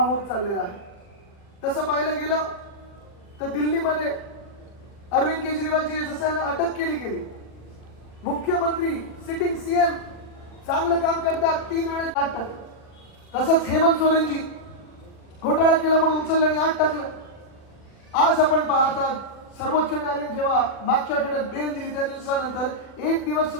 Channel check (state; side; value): late; right; 40 ms